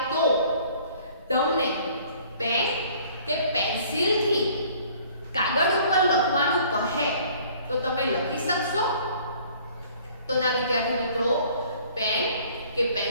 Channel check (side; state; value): both; inverted; correlation -0.55